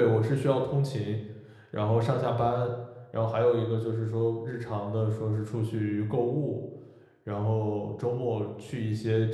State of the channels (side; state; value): both; identical; correlation 1.00